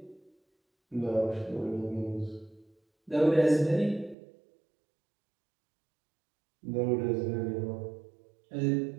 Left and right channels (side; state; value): left; drops out; at 4.2 s